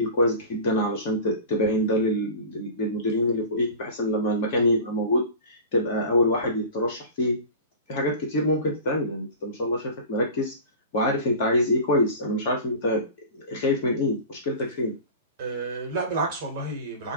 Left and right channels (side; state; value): both; inverted; correlation -0.35